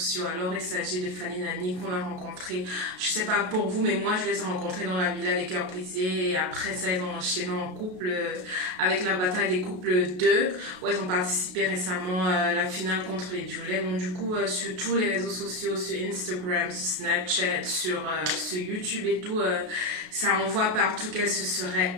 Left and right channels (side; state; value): left; late; 33 ms